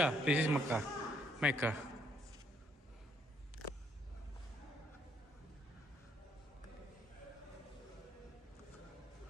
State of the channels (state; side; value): normal; both; correlation 0.68